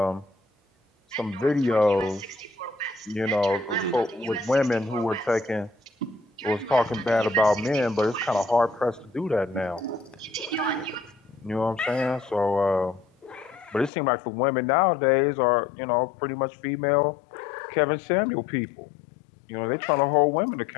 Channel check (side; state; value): right; drops out; at 13.9 s